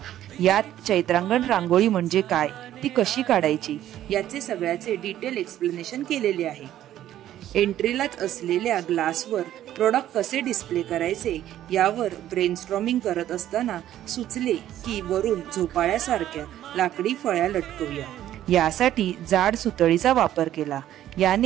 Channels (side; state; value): left; quieter; 12.4 dB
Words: यात चैत्रांगण रांगोळी म्हणजे काय, ती कशी काढायची याचे सगळ्याचे डिटेल एक्सप्लेनेशन केलेले आहे. एंट्रीलाच असलेल्या ग्लासवर प्रोडक्ट कसे डिस्प्ले करायचे यावर ब्रेनस्टॉर्मिंग करत असताना सुचले की वरून झोपाळ्यासारख्या लाकडी फळ्या लटकवूया. यासाठी जाड सुतळीचा वापर केला.